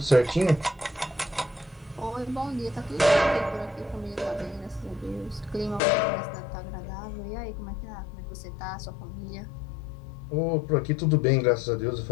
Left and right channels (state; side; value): drops out; right; at 5.8 s